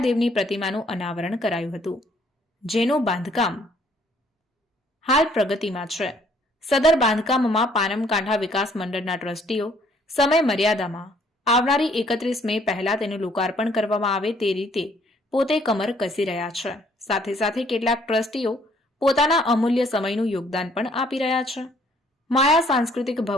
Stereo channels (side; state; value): both; normal; correlation 0.63